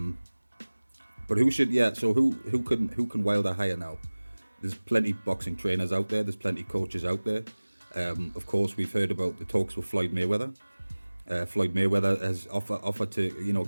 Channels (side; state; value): both; inverted; correlation -1.00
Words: who can Wilder hire now? There's plenty kind trainers out there. There's plenty coaches out there. Of course, we've heard about the talks with Floyd Mayweather. Floyd Mayweather has offered to